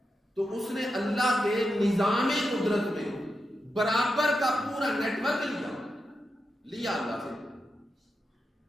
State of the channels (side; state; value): both; normal; correlation 0.88